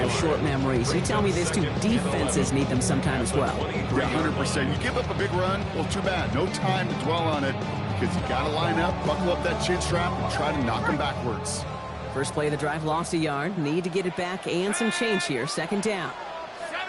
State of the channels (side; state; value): both; identical; correlation 1.00